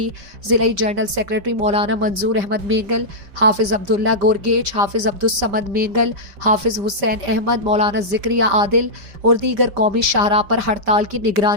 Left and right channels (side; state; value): left; late; 5.1 ms